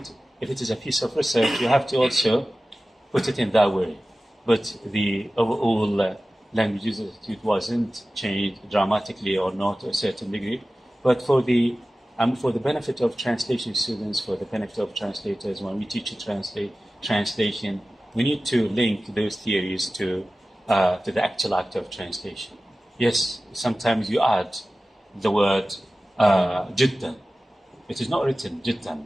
if it is a piece of research, you have to also put it in that way. But the overall language use attitude wasn't changed dramatically or not to a certain degree. But for the benefit of translation students, for the benefit of translators, when we teach translation, we need to link those theories to the actual act of translation. Yes, sometimes you add the word jiddan. It is not written jiddan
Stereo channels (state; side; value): normal; both; correlation 0.96